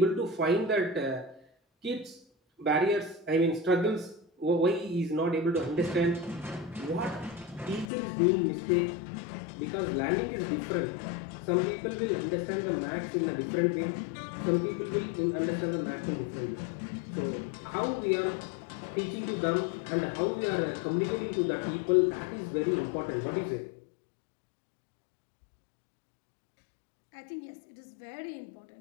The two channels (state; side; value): drops out; right; at 7.9 s